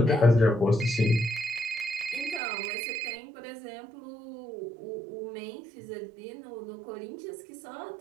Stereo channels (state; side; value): drops out; left; at 2.4 s